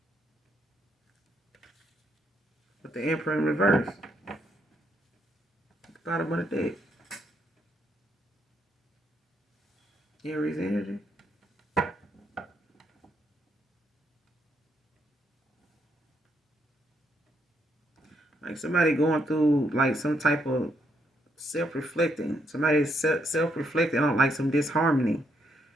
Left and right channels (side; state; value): both; normal; correlation 0.75